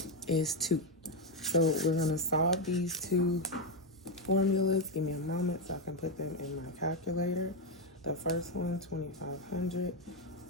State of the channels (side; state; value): both; normal; correlation 0.06